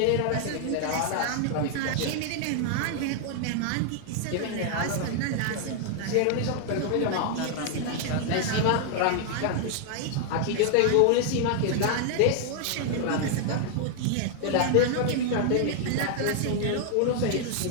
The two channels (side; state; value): both; different; correlation 0.00